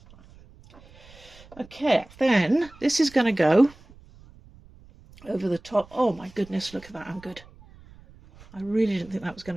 Okay, then this is going to go over the top. Oh my goodness, look at that, I'm good. I really didn't think that was going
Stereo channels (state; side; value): noise; right; rumble, 23 dB below the sound